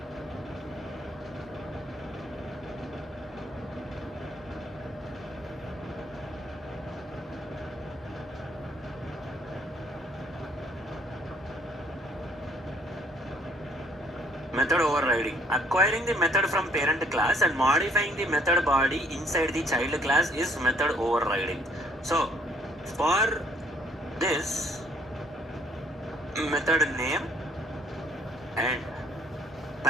Method overriding. Acquiring the method from parent class and modifying the method body inside the child class is method overriding. So for this, method name and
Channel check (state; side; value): normal; both; correlation 0.64